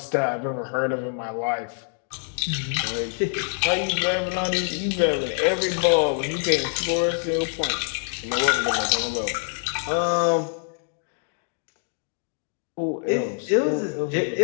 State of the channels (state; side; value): silent; right; 62 dB below the other